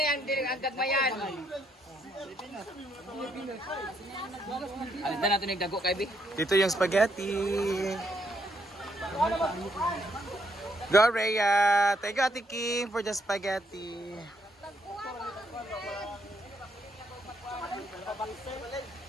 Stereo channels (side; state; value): both; normal; correlation 0.73